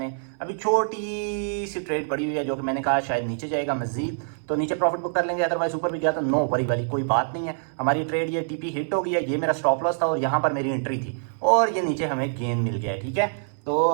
अभी छोटी सी ट्रेड पड़ी हुई है जो कि मैंने कहा शायद नीचे जाएगा मजीद, तो नीचे प्रॉफिट बुक कर लेंगे, अदरवाइज ऊपर भी गया तो नो वरी वाली कोई बात नहीं है। हमारी ट्रेड ये टीपी हिट हो गई है, ये मेरा स्टॉप लॉस था और यहाँ पर मेरी एंट्री थी, और ये नीचे हमें गेन मिल गया है। ठीक है, तो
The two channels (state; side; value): silent; left; 60 dB below the other